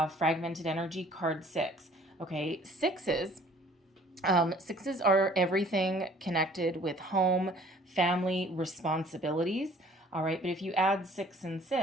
Fragmented energy, card 6. Okay, sixes are everything connected with home, family, responsibilities. All right, but if you add 6 and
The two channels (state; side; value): normal; both; correlation 0.54